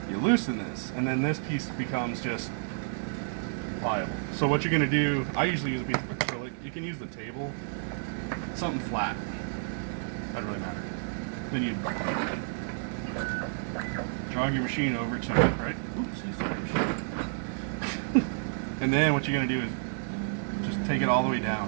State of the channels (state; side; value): silent; left; digital silence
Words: you loosen this, and then this piece becomes just pliable. So what you're going to do, I usually use a piece of acrylic. You can use the table, something flat. Doesn't really matter. Then you jog your machine over to it, right? Oops, and then what you're going to do is just take it all the way